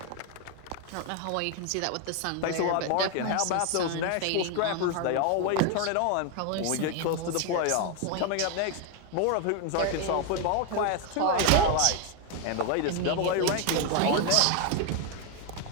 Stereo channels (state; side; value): different; both; correlation 0.01